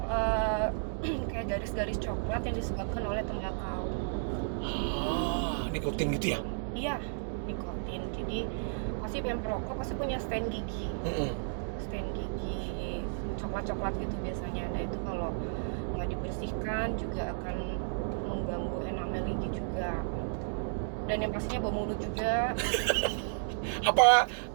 kayak garis-garis coklat yang disebabkan oleh tembakau. Nikotin gitu ya? Iya, nikotin. Jadi pasti yang perokok pasti punya stain gigi. Stain gigi coklat-coklat gitu biasanya. Nah itu kalau nggak dibersihkan juga akan mengganggu enamel gigi juga. Dan yang pastinya bau mulut juga. Apa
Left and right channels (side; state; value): left; silent; digital silence